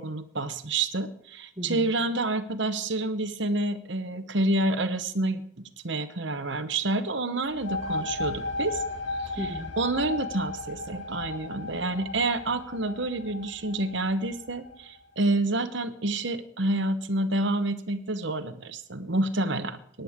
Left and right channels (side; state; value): both; normal; correlation 0.27